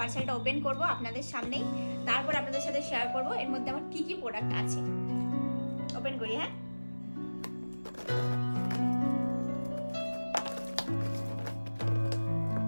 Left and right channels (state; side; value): inverted; both; correlation -1.00